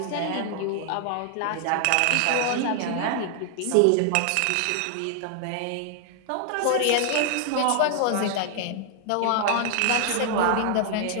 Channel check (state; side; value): different; both; correlation 0.00